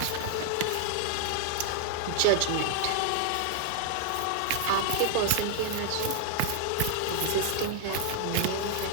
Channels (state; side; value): different; both; correlation 0.00